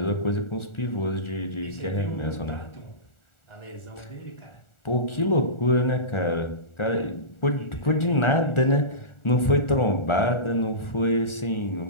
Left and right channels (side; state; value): right; late; 1.4 ms